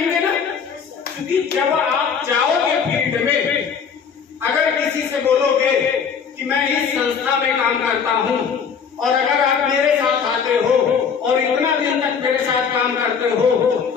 ना। क्योंकि जब आप जाओगे फील्ड में, अगर किसी से बोलोगे कि मैं इस संस्था में काम करता हूँ, और अगर आप मेरे साथ आते हो और इतना दिन तक मेरे साथ काम करते हो,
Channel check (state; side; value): quieter; right; 6.6 dB